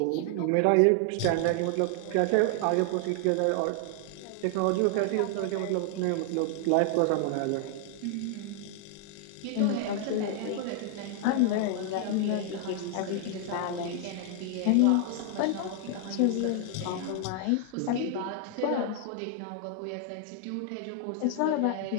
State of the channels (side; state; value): both; different; correlation 0.00